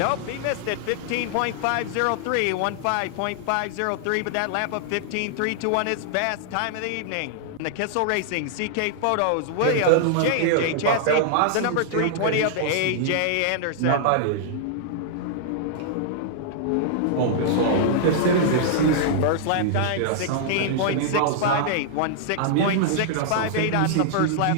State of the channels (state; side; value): different; both; correlation -0.01